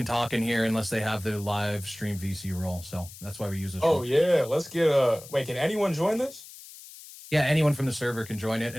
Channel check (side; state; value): left; noise; hiss, 17 dB below the sound